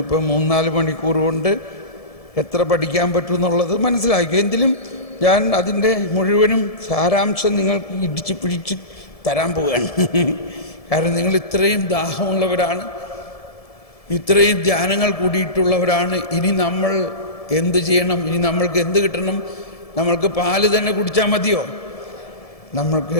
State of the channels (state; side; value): late; right; 1.7 ms